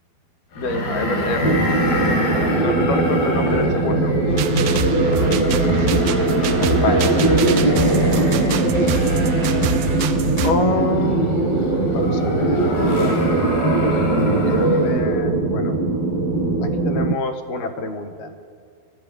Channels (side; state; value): right; late; 12 ms